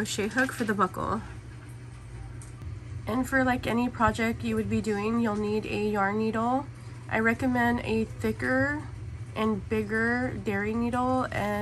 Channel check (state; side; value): identical; both; correlation 1.00